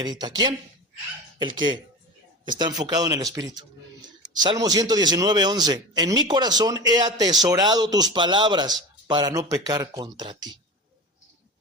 ¿Quién? El que está enfocado en el Espíritu. Salmo 119:11. En mi corazón he atesorado tus palabras para no pecar contra ti.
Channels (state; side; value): normal; both; correlation 0.30